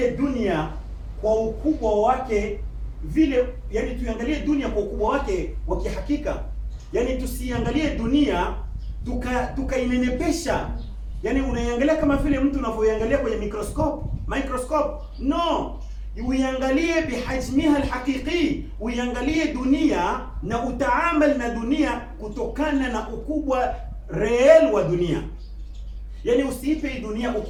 dunia kwa ukubwa wake vile, yani tuiangalie dunia kwa ukubwa wake wa kihakika. Yani tusiangalie dunia tukainenepesha, yani unaiangalia kama vile mtu unavyoiangalia kwenye microscope. No, uiangalie bihajmiha alhaqiqi, uiangalie dunia na utaamal na dunia kutokana na ukubwa real wa dunia. Yani usiipe dunia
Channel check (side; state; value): both; identical; correlation 1.00